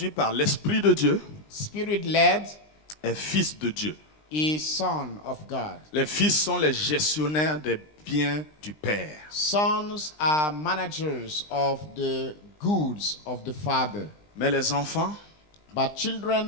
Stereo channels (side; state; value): right; late; 20 ms